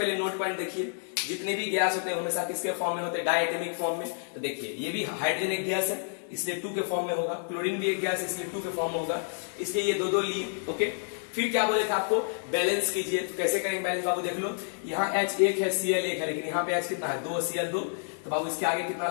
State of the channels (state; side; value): silent; right; digital silence